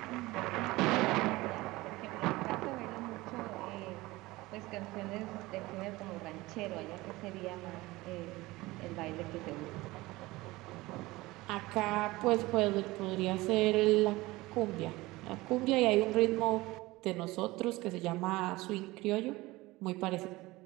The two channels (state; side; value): quieter; left; 20.1 dB